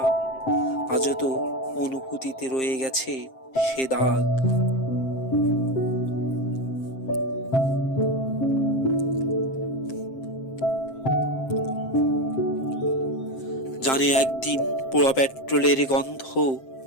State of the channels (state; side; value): late; right; 7.6 ms